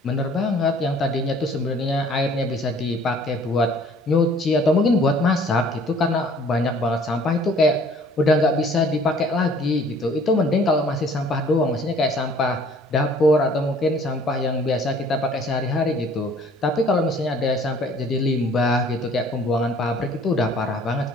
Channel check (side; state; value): both; normal; correlation 0.55